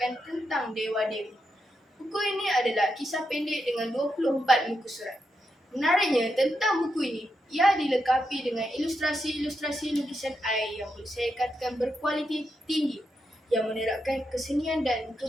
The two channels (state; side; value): normal; both; correlation 0.84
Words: tentang dewa-dewi. Buku ini adalah kisah pendek dengan 24 muka surat. Menariknya tentang buku ini, ia dilengkapi dengan ilustrasi-ilustrasi lukisan air yang boleh saya katakan berkualiti tinggi yang menerapkan kesenian dan